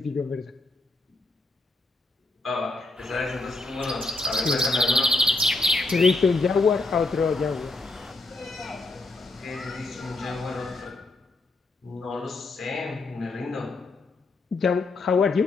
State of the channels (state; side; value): quieter; right; 3.2 dB